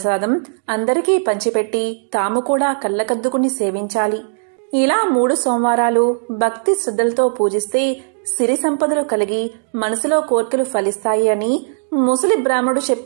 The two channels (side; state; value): left; silent; digital silence